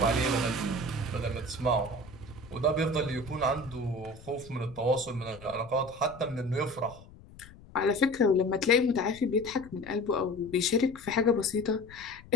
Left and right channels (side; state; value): left; noise; rumble, 20 dB below the sound